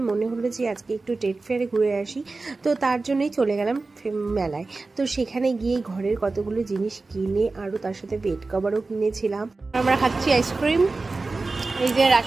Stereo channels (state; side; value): quieter; left; 3.6 dB